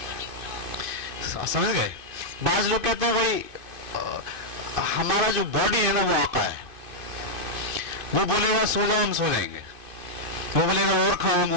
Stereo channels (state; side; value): late; left; 2.5 ms